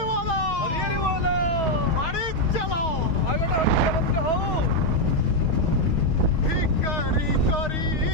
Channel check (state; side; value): late; right; 6.4 ms